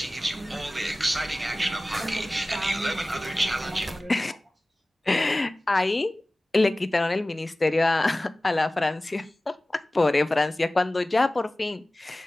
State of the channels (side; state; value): both; normal; correlation 0.97